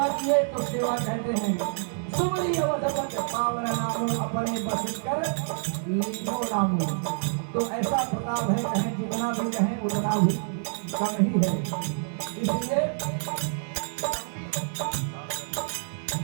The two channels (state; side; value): silent; left; 57 dB below the other